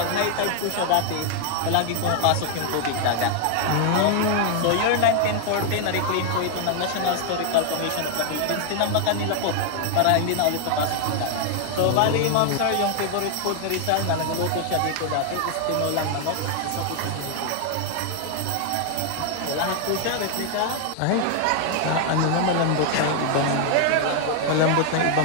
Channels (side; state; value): both; different; correlation 0.00